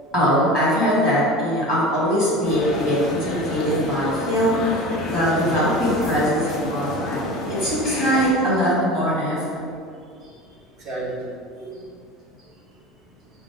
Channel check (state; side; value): normal; both; correlation 0.34